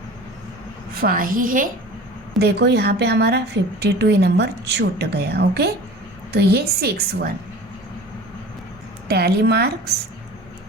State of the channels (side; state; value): both; normal; correlation 0.40